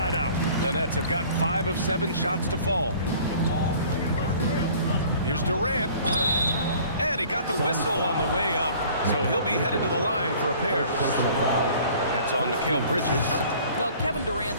out. The Nets have gotten 5 of 7 shots to fall. Here's Durant. And he got the whistle on the way up, so he'll be headed to the line for a pair. That's on Mikal Bridges. Well, Kevin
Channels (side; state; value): both; inverted; correlation -0.50